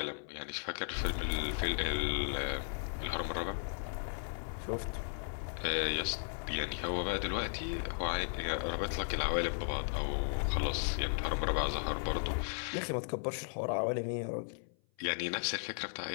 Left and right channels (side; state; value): right; silent; 54 dB below the other